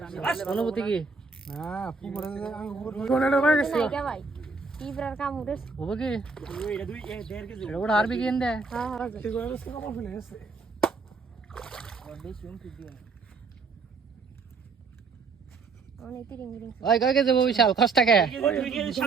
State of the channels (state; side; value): quieter; left; 4.5 dB